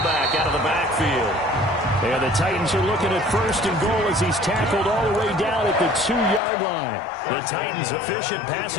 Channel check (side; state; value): right; drops out; at 6.4 s